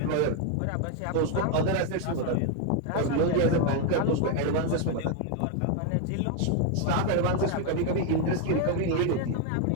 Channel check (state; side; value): different; both; correlation 0.01